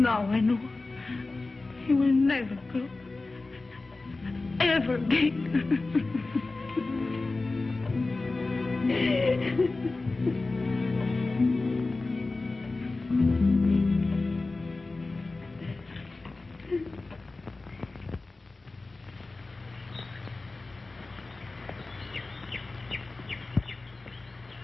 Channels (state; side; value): quieter; right; 3.4 dB